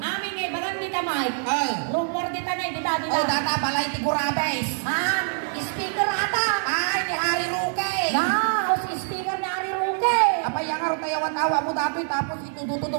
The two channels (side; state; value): left; silent; digital silence